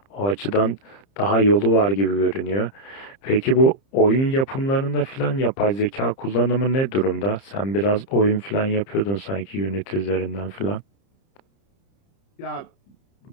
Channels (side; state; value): right; late; 30 ms